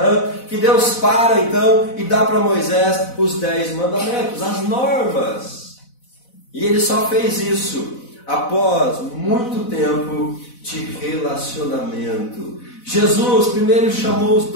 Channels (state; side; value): late; right; 4.0 ms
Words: que Deus para então e dá para Moisés os 10 mandamentos, as normas. E ele só fez isso após muito tempo de relacionamento. Jesus primeiro chamou os